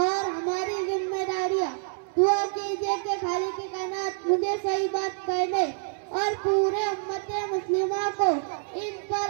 اور ہماری ذمہ داریاں۔ دعا کیجئے کہ خالق کائنات مجھے صحیح بات کہنے اور پورے امت مسلمہ کو ان پر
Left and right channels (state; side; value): silent; left; 60 dB below the other